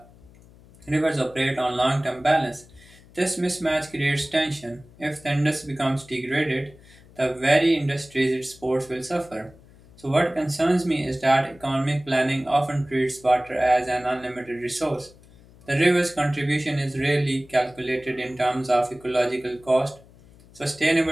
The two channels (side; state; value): left; noise; hum, 25 dB below the sound